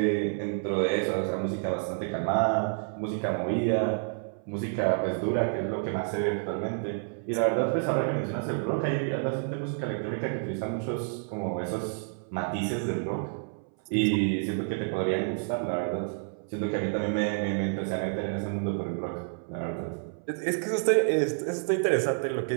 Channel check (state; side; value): silent; left; 58 dB below the other